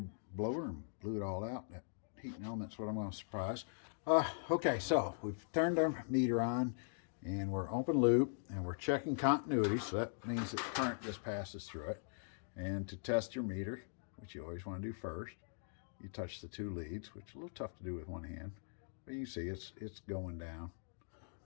blower and blew it all out. That heating element's what I'm going to surprise. Okay, so we've turned our meter on, and we're open loop, and we're checking continuity. So that means that current just passes through it. And to test your meter, which you always want to do first, you touch the 2 leads, which is a little tough to do with one hand, but you see it's going down.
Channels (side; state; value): right; silent; digital silence